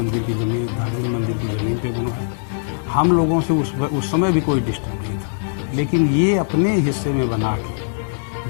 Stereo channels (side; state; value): right; silent; digital silence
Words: की ज़मीन पे बनवाया। हम लोगों से उस समय भी कोई डिस्टर्ब नहीं था, लेकिन ये अपने हिस्से में बना के